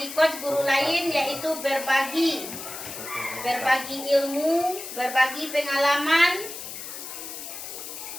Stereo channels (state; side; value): noise; left; hiss, 9 dB below the sound